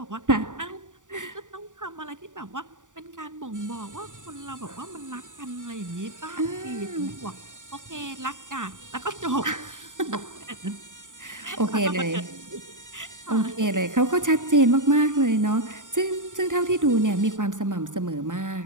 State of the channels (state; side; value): late; left; 0.87 ms